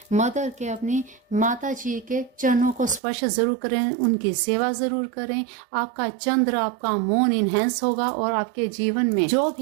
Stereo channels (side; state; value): left; drops out; at 3.0 s